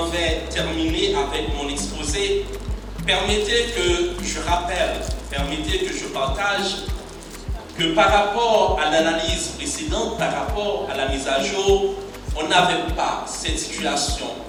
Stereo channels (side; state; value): both; identical; correlation 1.00